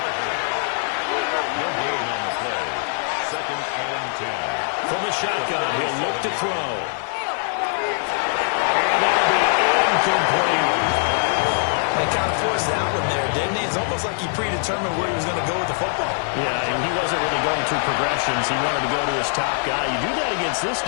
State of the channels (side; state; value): right; silent; 61 dB below the other